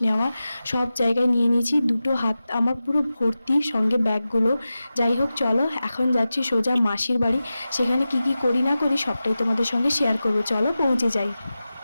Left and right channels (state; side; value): inverted; both; correlation -0.94